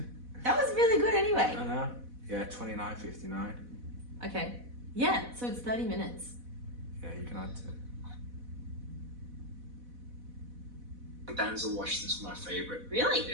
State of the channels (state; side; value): late; left; 4.1 ms